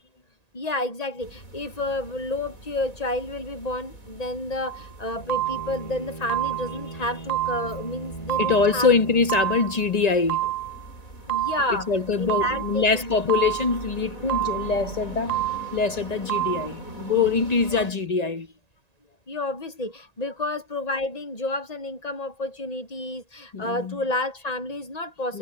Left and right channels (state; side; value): late; right; 1.9 ms